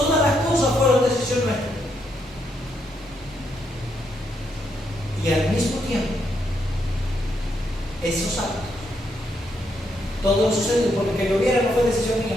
las cosas fueron decisión nuestra. Y al mismo tiempo, esos actos, todo sucedió porque que lloviera no fue decisión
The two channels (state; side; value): normal; both; correlation 0.78